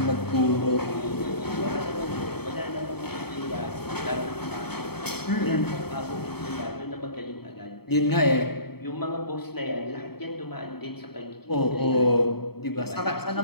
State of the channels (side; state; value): right; late; 0.96 ms